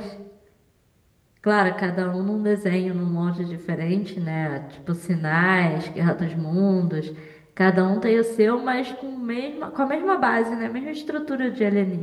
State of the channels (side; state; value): both; identical; correlation 1.00